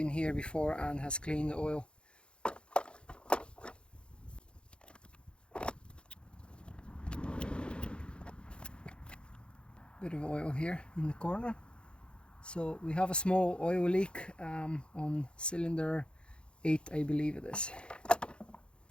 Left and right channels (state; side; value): late; right; 0.055 ms